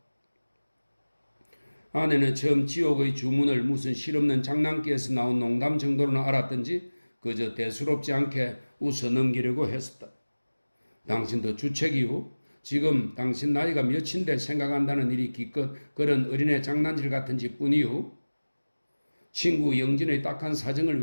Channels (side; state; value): both; inverted; correlation -1.00